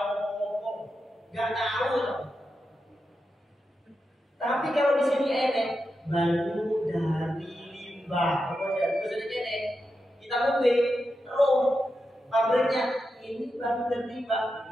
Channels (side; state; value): both; normal; correlation 0.88